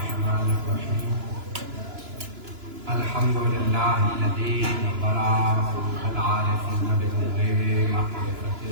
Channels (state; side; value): late; left; 2.9 ms